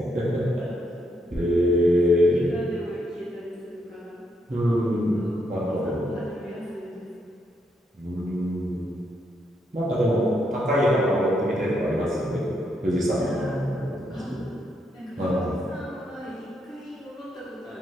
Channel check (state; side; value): normal; both; correlation 0.78